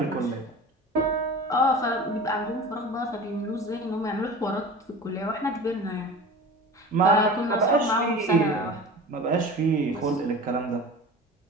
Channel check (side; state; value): both; normal; correlation 0.36